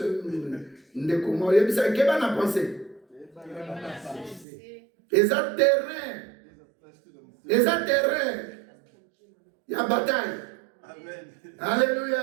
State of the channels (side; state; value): left; drops out; at 4.5 s